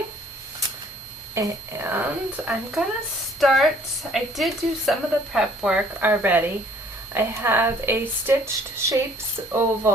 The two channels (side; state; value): both; normal; correlation 0.58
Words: And I'm going to start, I did do some of the prep work already. I have a Stitched Shapes